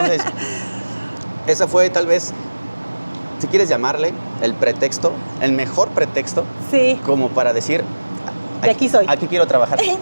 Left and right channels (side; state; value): both; inverted; correlation -1.00